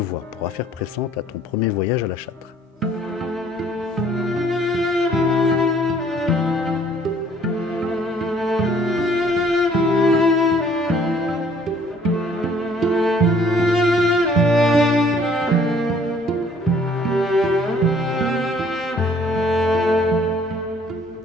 pour affaire pressante à ton premier voyage à la Châtre.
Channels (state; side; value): normal; both; correlation 0.59